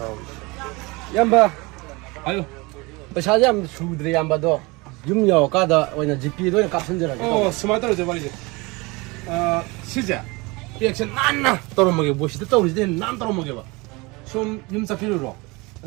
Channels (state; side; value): quieter; left; 25.2 dB